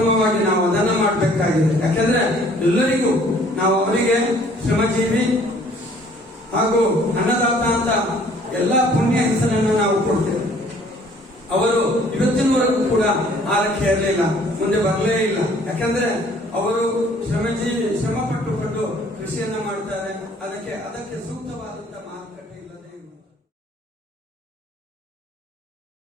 ನಾವು ಅದನ್ನ ಮಾಡಬೇಕಾಗಿದೆ. ಯಾಕೆಂದ್ರೆ ಎಲ್ಲರಿಗೂ ನಾವು ಅವರಿಗೆ ಶ್ರಮಜೀವಿ ಹಾಗೂ ಅನ್ನದಾತ ಅಂತ ಎಲ್ಲಾ ಪುಣ್ಯ ಹೆಸರನ್ನು ನಾವು ಕೊಡ್ತೇವೆ. ಅವರು ಇವತ್ತಿನವರೆಗೂ ಕೂಡ ಆರಕ್ಕೆ ಇರಲಿಲ್ಲ, ಮುಂದೆ ಬರಲೇ ಇಲ್ಲ. ಯಾಕಂದ್ರೆ ಅವರು ಶ್ರಮ ಪಟ್ಟುಕೊಂಡು ಕೃಷಿಯನ್ನ ಮಾಡ್ತಾರೆ. ಅದಕ್ಕೆ ಸೂಕ್ತವಾದಂತ ಮಾರುಕಟ್ಟೆ ಇಲ್ಲದೆ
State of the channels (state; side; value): normal; both; correlation 0.57